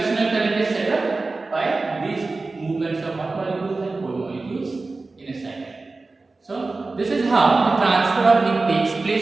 current is set up by these movements of hot molecules and cold molecules in a cycle. So this is how the transfer of heat takes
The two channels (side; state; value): left; quieter; 3.6 dB